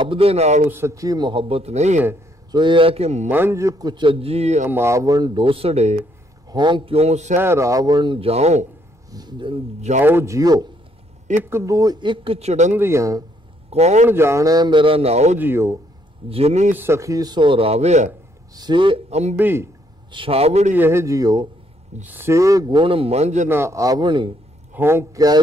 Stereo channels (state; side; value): late; left; 2.4 ms